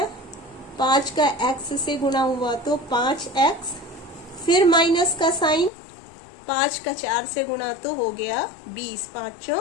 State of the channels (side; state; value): right; drops out; at 5.7 s